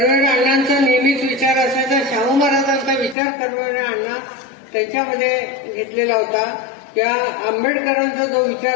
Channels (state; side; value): drops out; right; at 3.2 s